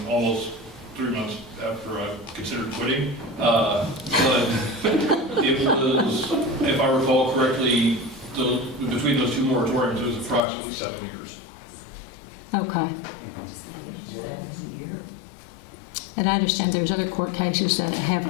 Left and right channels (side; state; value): right; drops out; at 10.4 s